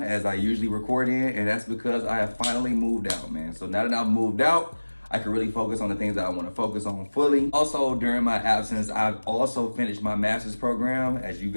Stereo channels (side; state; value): both; inverted; correlation -1.00